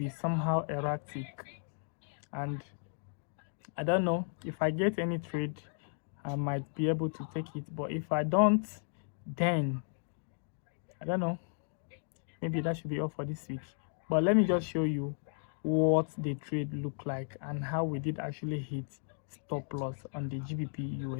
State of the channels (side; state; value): right; silent; digital silence